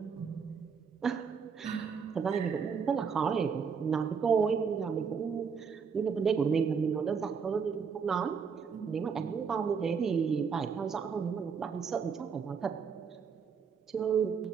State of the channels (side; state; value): left; quieter; 6.2 dB